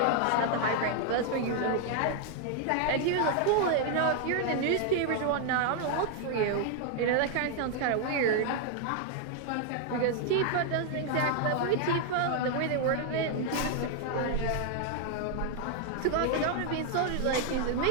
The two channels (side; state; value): both; different; correlation 0.00